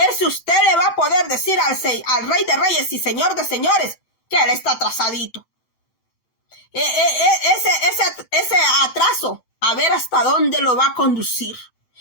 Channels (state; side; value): late; right; 8.9 ms